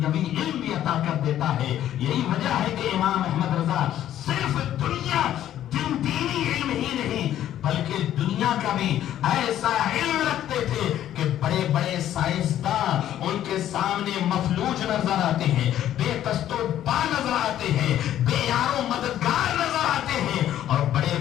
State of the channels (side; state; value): right; quieter; 11.8 dB